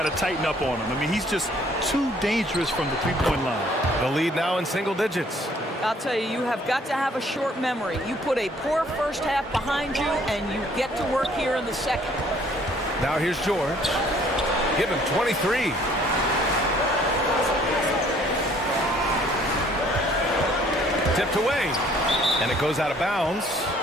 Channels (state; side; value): normal; both; correlation 0.60